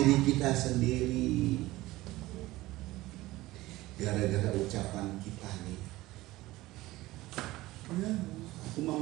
kita sendiri gara-gara ucapan kita nih. Ya, aku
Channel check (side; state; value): left; quieter; 18.1 dB